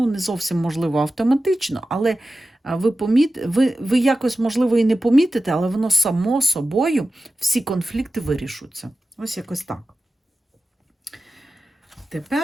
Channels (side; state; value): both; normal; correlation 0.94